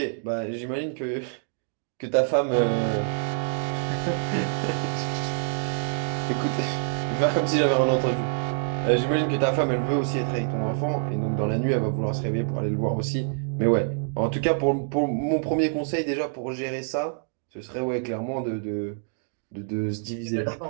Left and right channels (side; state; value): left; silent; digital silence